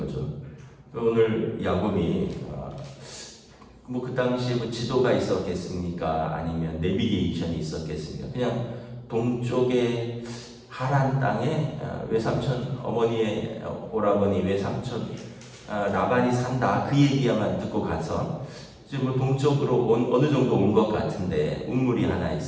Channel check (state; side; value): identical; both; correlation 1.00